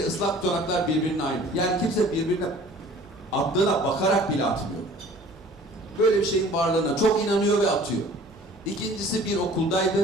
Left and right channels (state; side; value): normal; both; correlation 0.49